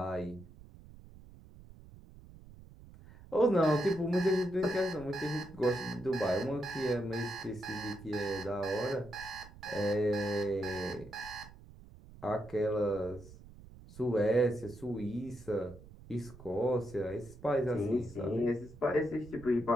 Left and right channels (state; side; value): noise; right; rumble, 19 dB below the sound